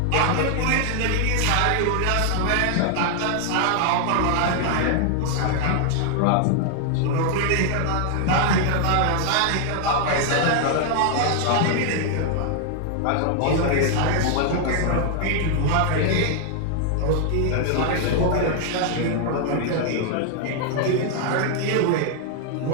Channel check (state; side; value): different; both; correlation 0.00